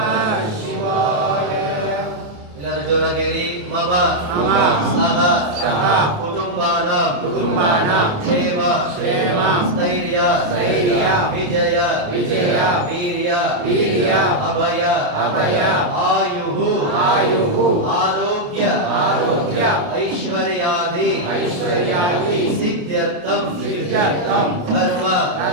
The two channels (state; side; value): late; left; 29 ms